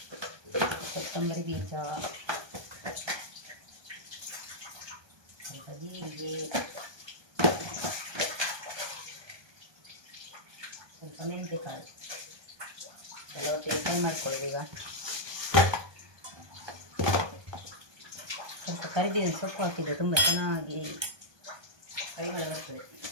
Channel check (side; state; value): left; late; 1.2 ms